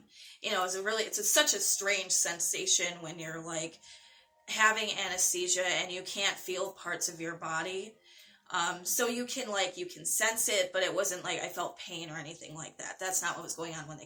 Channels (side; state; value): both; identical; correlation 1.00